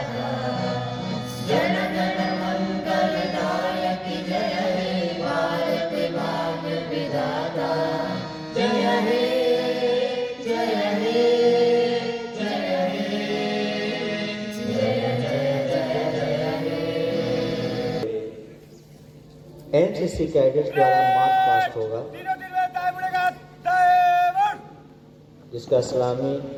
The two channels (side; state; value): both; identical; correlation 1.00